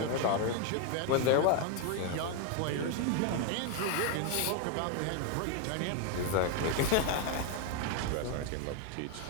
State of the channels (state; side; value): different; both; correlation 0.01